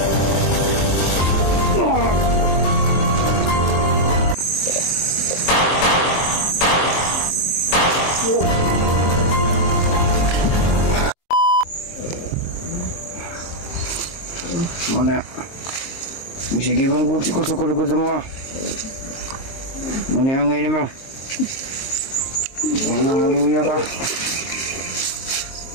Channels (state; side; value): late; right; 23 ms